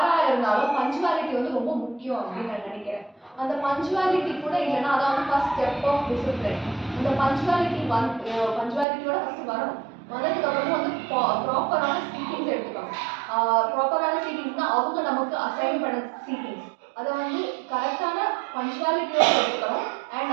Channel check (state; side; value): drops out; left; at 8.8 s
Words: இருந்தாலும் பஞ்சுவாலிட்டி ரொம்ப முக்கியம் அப்படின்னு நான் நினைக்கிறேன். அந்த பஞ்சுவாலிட்டி கூட இல்லைன்னா அதான் ஃபர்ஸ்ட் ஸ்டெப் ஆஃப் டிசிப்ளின். அந்த பஞ்சுவாலிட்டியோட ஃபர்ஸ்ட் வரணும். வந்ததுக்கு அப்புறம் ப்ராப்பரான சீட்டிங்ஸ் எடுத்துக்கணும். ப்ராப்பரான சீட்டிங்ஸ்னா அவங்க நமக்கு அசைன் பண்ண சீட்டிங்ஸ் அதை கரெக்டான பஞ்சுவாலிட்டியோட எடுத்துக்கணும். அண்ட்